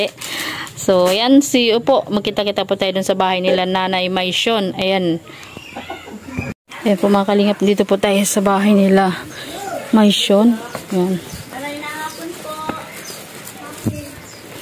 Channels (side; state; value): both; identical; correlation 1.00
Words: So, ayan, upo. Magkita-kita po tayo dun sa bahay nila Nanay Maisyon. Ayan. Ayan po mga kalingap. Dito po tayo sa bahay nila Maisyon. Ayan.